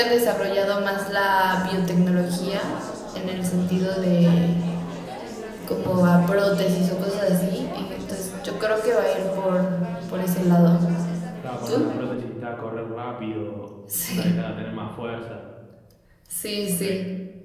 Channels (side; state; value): both; identical; correlation 1.00